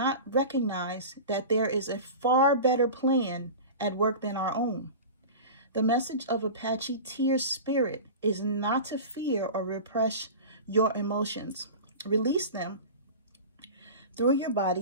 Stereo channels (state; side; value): inverted; both; correlation -0.32